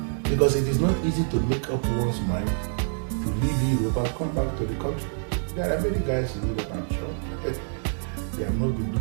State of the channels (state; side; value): silent; left; digital silence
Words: Because it is not easy to make up one's mind to leave Europe and come back to the country. There are many guys in Europe, I'm sure. They have not been